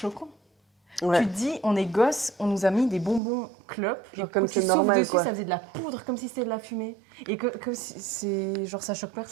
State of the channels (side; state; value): left; drops out; at 3.2 s